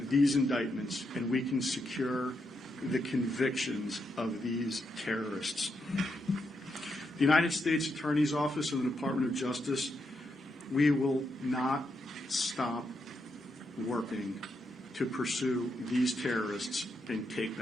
these indictments and we can secure the convictions of these terrorists. The United States Attorney's Office and the Department of Justice, we will not stop working to pursue these terrorists and take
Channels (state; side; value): normal; both; correlation 0.82